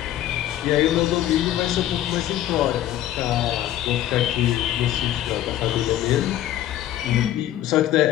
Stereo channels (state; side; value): quieter; right; 12.7 dB